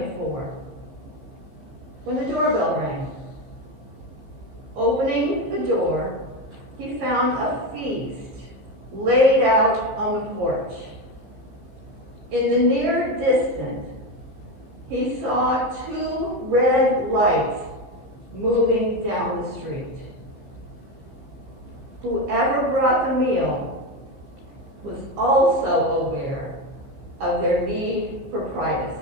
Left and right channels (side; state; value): left; late; 15 ms